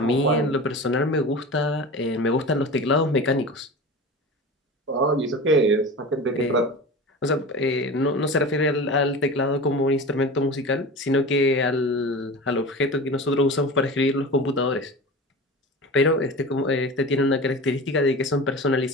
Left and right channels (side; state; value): both; normal; correlation 0.32